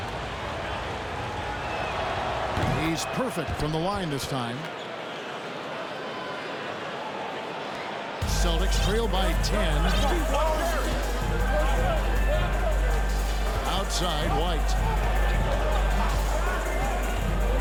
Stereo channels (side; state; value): both; identical; correlation 1.00